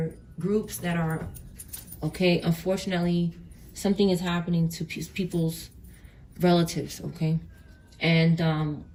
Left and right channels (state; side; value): identical; both; correlation 1.00